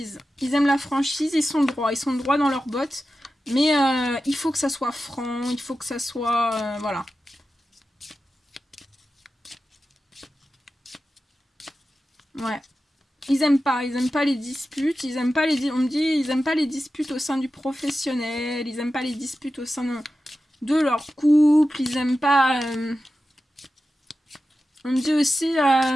Ils aiment la franchise. Ils sont droits. Ils sont droits dans leurs bottes. Mais il faut que ça soit franc. Il faut que ça soit voilà. Ouais. Ils aiment pas les disputes, on me dit, ils aiment pas les disputes au sein du professionnel, ils aiment pas les disputes au sein de leur couple, ils aiment pas... on me dit aussi,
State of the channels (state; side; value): normal; both; correlation 0.92